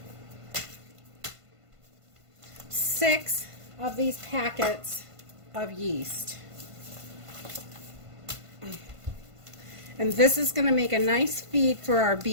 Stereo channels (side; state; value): left; late; 1.5 ms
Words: 6 of these packets of yeast. And this is going to make a nice feed for our